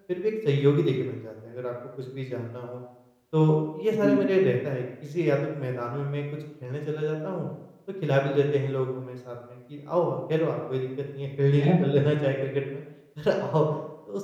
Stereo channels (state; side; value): identical; both; correlation 1.00